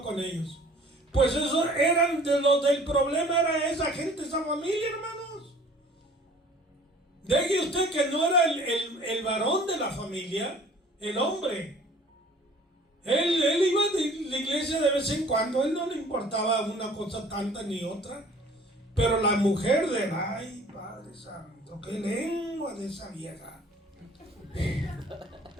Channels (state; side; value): normal; both; correlation 0.51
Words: con ellos. Pues eso eran de los del problema, era esa gente, esa familia, hermanos. Deje usted que no era el varón de la familia, el hombre. Él iba de la iglesia de vez en cuando, él no le importaba una cosa tanta ni otra. Pero la mujer ay, Padre Santo, qué lengua de esa vieja.